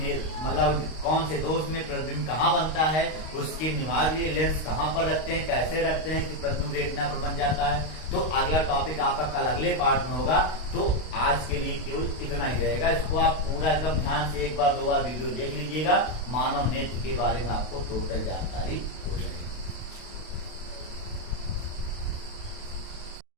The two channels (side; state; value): right; late; 32 ms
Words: मतलब कौन से दोष में प्रतिबिंब कहाँ बनता है, उसके निवारण के लिए लेंस कहाँ पर रखते हैं, कैसे रखते हैं कि प्रतिबिंब रेटिना पर बन जाता है। तो अगला टॉपिक आपका कल अगले पार्ट में होगा। तो आज के लिए केवल इतना ही रहेगा। इसको आप पूरा एकदम ध्यान से 1 बार 2 बार वीडियो देख लीजिएगा। मानव नेत्र के बारे में आपको टोटल जानकारी